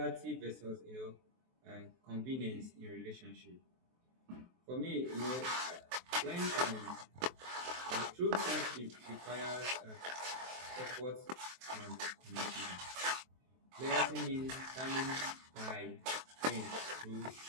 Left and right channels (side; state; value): left; late; 23 ms